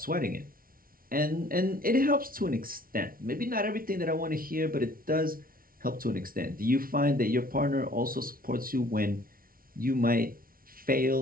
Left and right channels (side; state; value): left; late; 0.42 ms